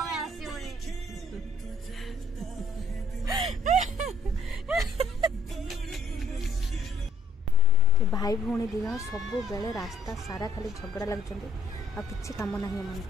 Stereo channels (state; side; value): normal; both; correlation 0.64